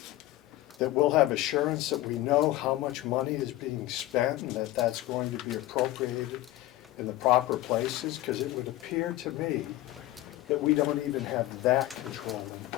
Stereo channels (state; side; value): quieter; right; 16.0 dB